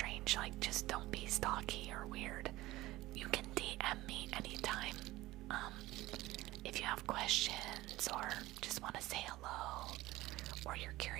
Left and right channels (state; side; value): quieter; left; 17.9 dB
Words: like just don't be stalky or weird, you can DM me anytime. If you have questions or just want to say hello, or you're